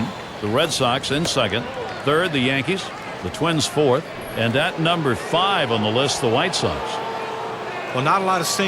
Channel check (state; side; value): identical; both; correlation 1.00